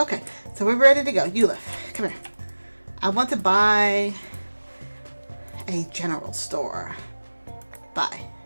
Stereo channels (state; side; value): inverted; both; correlation -1.00